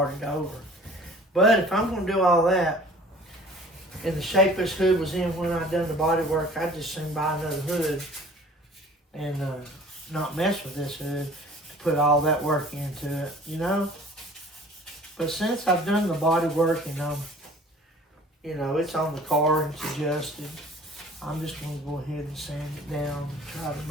over. But if I'm going to do all that, in the shape this hood was in when I done the body work, I'd just soon buy another hood and not mess with this hood to put all that work into it, you know. But since I've done the body work and you know, it's on the car and it's adjusted, I'm just going to go ahead and sand it down and try to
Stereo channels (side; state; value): both; normal; correlation 0.49